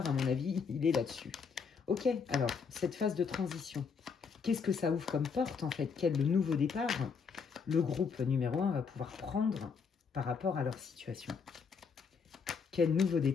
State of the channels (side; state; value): right; quieter; 5.7 dB